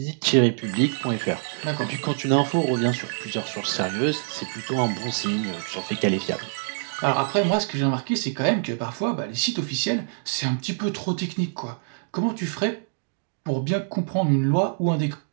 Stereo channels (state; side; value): silent; left; digital silence